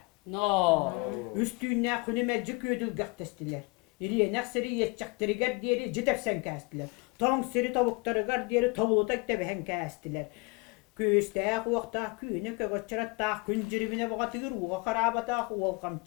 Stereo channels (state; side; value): quieter; right; 27.9 dB